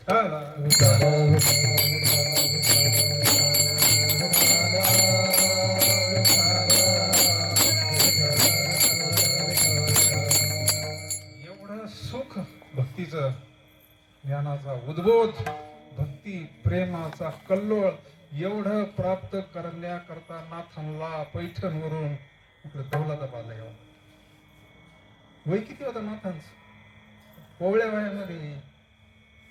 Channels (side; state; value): both; identical; correlation 1.00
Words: एवढं सुख भक्तीचं, ज्ञानाचा उद्बोध, भक्ती प्रेमाचा कल्लोळ एवढं प्राप्त करण्याकरता नाथांना पैठणवरून इकडे दौलताबादला यावं. वय किती होतं नाथांचं? कोवळ्या वयामध्ये